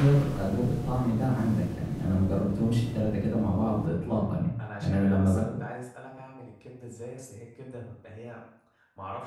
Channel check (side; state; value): both; identical; correlation 1.00